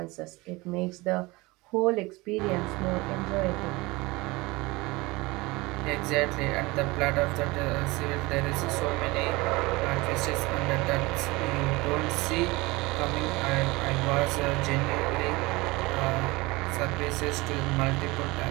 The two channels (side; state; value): left; quieter; 22.7 dB